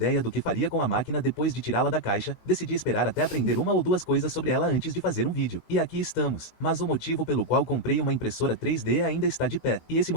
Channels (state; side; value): late; right; 18 ms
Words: do que faria com a máquina depois de tirá-la da caixa, decidi esperar até aprender uma ou duas coisas sobre ela antes de fazer um vídeo. E aqui estamos. Mas o motivo pelo qual comprei uma impressora 3D ainda está de pé. E esse